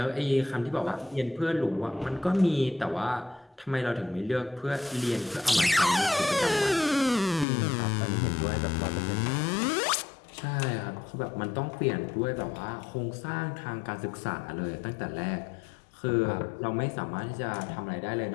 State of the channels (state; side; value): drops out; right; at 7.5 s